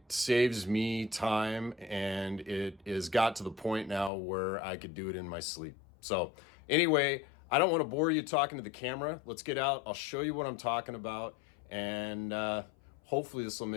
saves me time, and it has got to the point now where I could do it in my sleep. So anyway, I don't want to bore you talking to the camera. Let's get out. I'll show you what I'm talking about, and hopefully this will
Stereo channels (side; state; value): right; drops out; at 4.1 s